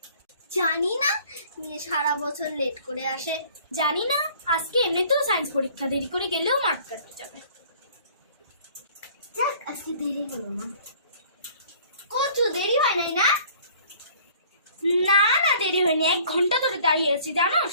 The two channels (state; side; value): inverted; both; correlation -0.53